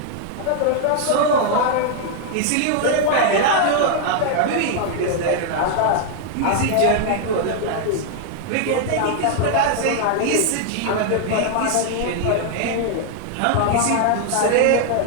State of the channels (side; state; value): both; different; correlation 0.00